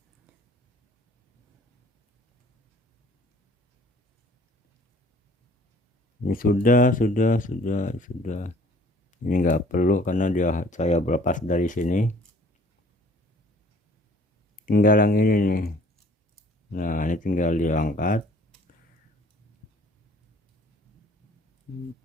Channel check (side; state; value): both; normal; correlation 0.55